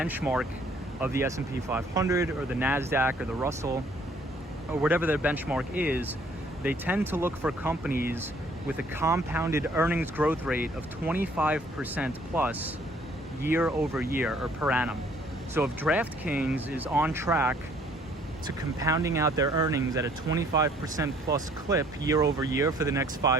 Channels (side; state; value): both; normal; correlation 0.60